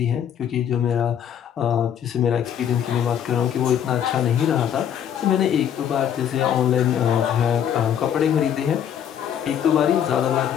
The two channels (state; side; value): quieter; right; 9.2 dB